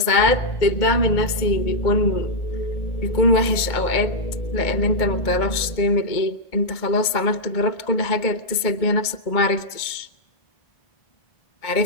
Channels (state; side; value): late; right; 2.1 ms